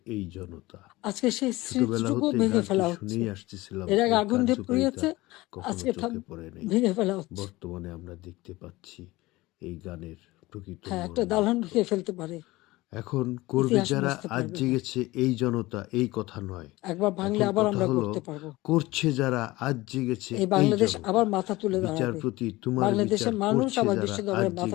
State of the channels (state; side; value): quieter; right; 19.8 dB